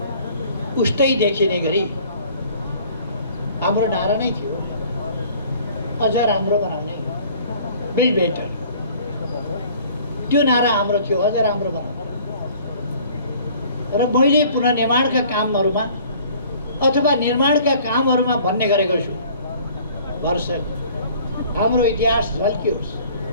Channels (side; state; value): both; inverted; correlation -0.53